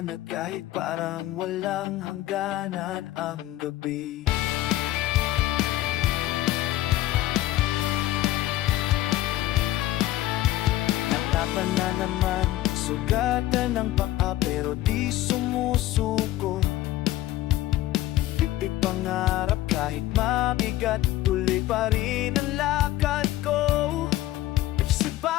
kahit parang walang hangganan ang gabi. Natapan na naman, sugatan ng paa pero di sumusuko. Pipig pangarap kahit mabigat, tuloy pa rin ang lakad ko. Sa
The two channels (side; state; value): right; quieter; 15.1 dB